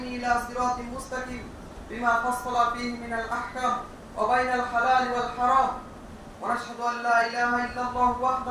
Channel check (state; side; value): identical; both; correlation 1.00